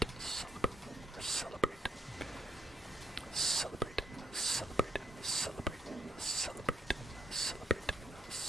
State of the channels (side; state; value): both; normal; correlation 0.75